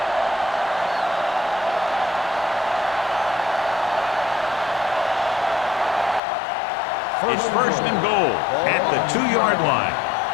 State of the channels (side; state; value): right; drops out; at 6.2 s